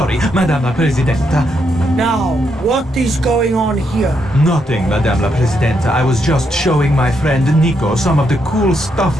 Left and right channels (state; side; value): normal; both; correlation 0.79